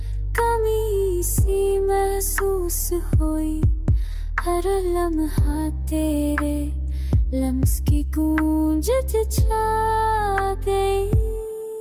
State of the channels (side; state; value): both; identical; correlation 1.00